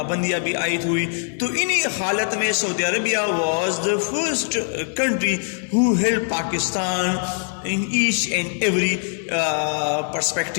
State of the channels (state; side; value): silent; right; digital silence